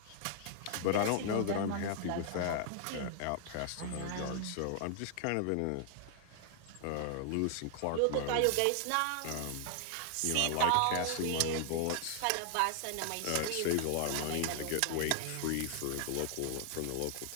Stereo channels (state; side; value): different; both; correlation 0.00